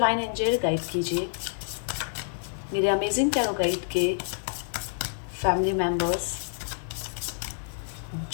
एंजल गाइड कीजिए मेरे अमेजिंग टैरो गाइड के फैमिली मेम्बर्स,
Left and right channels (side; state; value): right; silent; 59 dB below the other